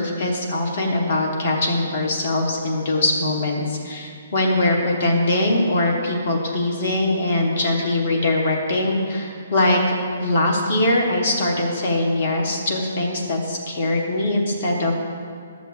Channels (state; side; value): inverted; both; correlation -0.69